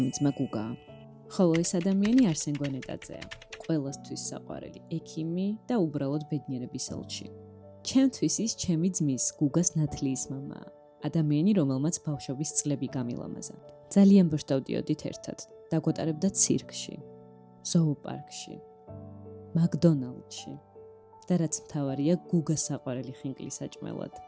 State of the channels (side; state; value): both; identical; correlation 1.00